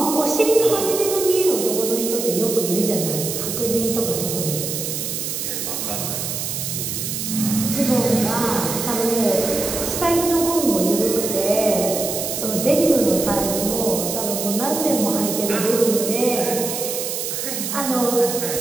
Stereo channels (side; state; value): right; noise; hiss, 4 dB below the sound